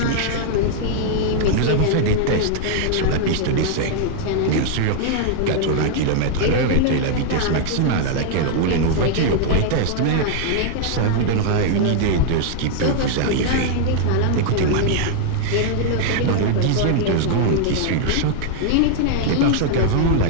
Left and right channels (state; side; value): different; both; correlation 0.00